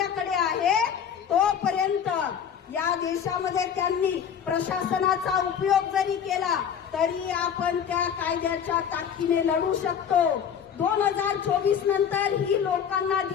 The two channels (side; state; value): right; quieter; 8.0 dB